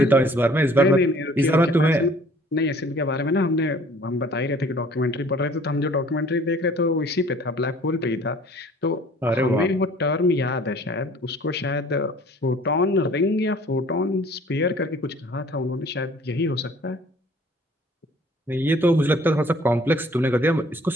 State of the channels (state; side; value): normal; both; correlation 0.53